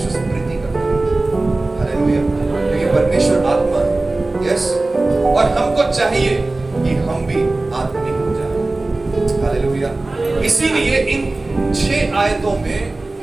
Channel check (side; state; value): left; quieter; 3.1 dB